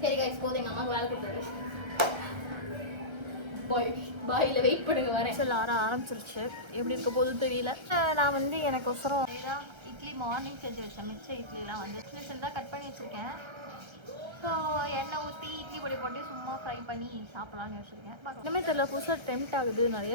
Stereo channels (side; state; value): left; late; 1.3 ms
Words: சரி கைஸ், போதும். எங்கள் அம்மாவுக்கு வேலை கொடுத்தாரு. பாயில் வெயிட் பண்ணுங்க, வரேன். சில ஆரம்பிச்சிருச்சு. எப்படி இருக்க போதும் தெரியல. நான் வந்து எனக்கு ஒசரம் இட்லி மார்னிங் செஞ்சு வச்சேன். மிச்ச இட்லிலாம் வந்து சின்ன சின்னதாக கட் பண்ணி வச்சுருக்கேன். ஸோ எண்ணெய் ஊற்றி இட்லி பொடி போட்டு சும்மா ஃப்ரை பண்ணி சாப்பிட்லான்னு வச்சுருக்கேன். இன்னுமே தெரியல, புதுசாக டெம்ட் ஆகுது